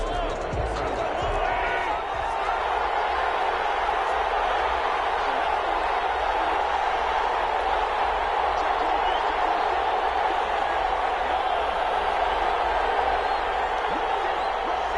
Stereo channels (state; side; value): identical; both; correlation 1.00